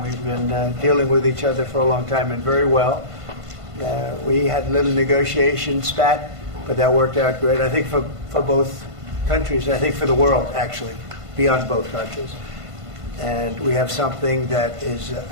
been dealing with each other for a long time and very well. We had a little negotiation spat, but that worked out great. I think for both countries, I think for the world, actually, beyond both countries. And we have something that is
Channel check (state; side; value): late; left; 1.5 ms